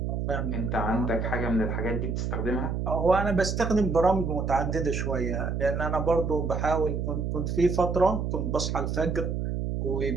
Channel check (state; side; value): noise; right; hum, 1 dB below the sound